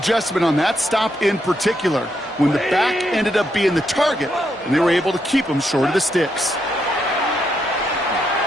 on that stop in particular, when the back ended up being the target, and they were able to keep him short of the sticks.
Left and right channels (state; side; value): normal; both; correlation 0.79